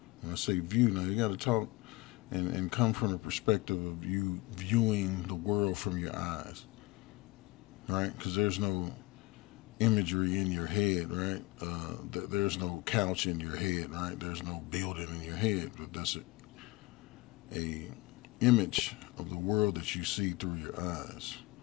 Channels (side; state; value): right; quieter; 22.1 dB